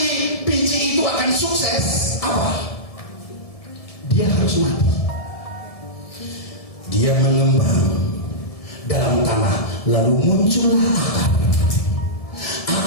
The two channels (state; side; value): late; right; 1.7 ms